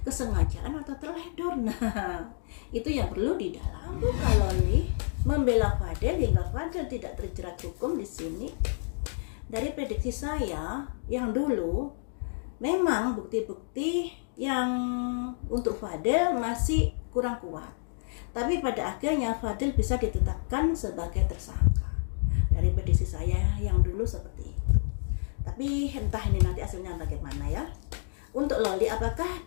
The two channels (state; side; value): silent; right; digital silence